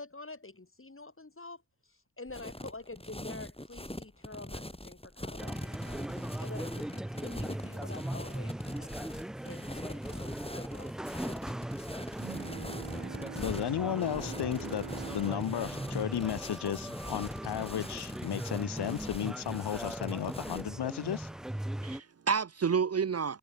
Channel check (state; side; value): normal; both; correlation 0.24